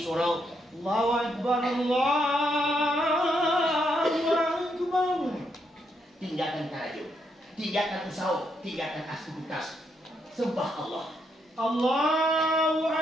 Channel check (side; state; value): both; normal; correlation 0.77